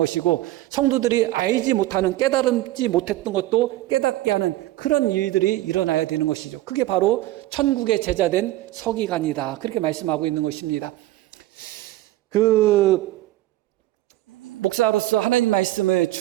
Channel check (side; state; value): left; quieter; 16.0 dB